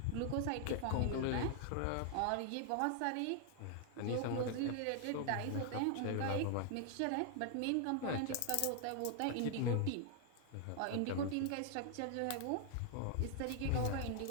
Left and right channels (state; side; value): different; both; correlation 0.00